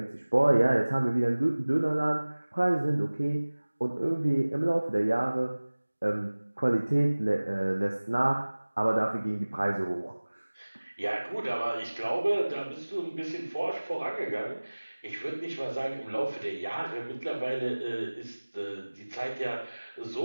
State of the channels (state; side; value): inverted; both; correlation -1.00